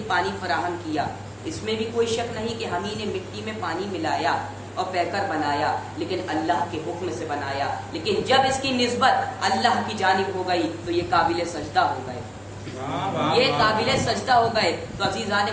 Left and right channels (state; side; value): identical; both; correlation 1.00